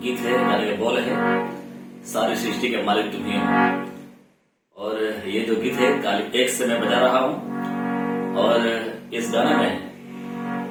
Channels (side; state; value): both; identical; correlation 1.00